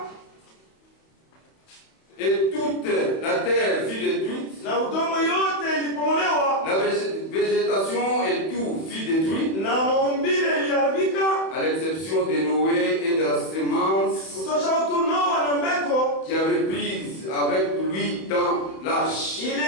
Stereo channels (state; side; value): late; right; 31 ms